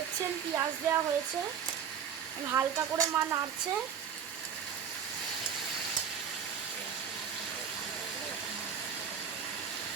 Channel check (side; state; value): left; quieter; 7.6 dB